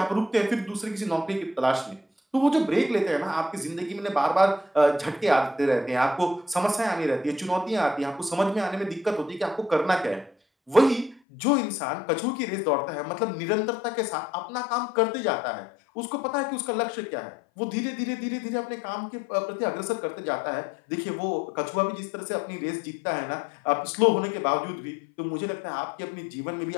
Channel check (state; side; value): drops out; right; at 11.2 s